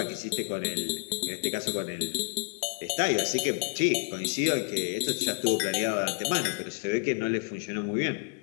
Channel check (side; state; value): right; quieter; 37.3 dB